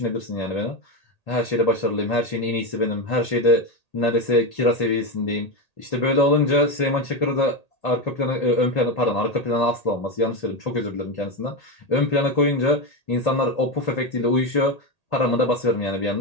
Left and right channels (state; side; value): late; right; 1.8 ms